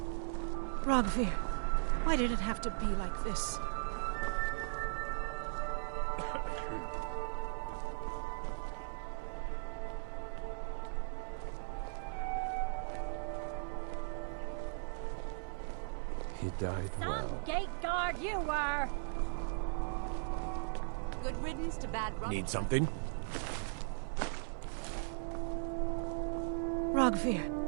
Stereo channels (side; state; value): left; silent; 52 dB below the other